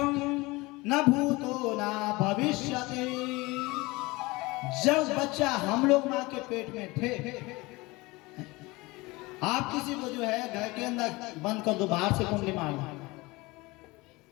न भूतो न भविष्यति। जब बच्चा हम लोग माँ के पेट में थे, आप किसी को जो है घर के अंदर बंद कर दो, बाहर से कुंडली मार दो,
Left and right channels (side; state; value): right; quieter; 22.7 dB